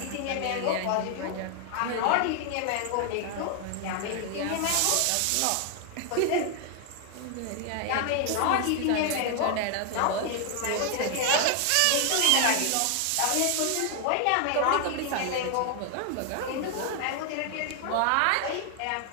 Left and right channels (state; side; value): different; both; correlation 0.00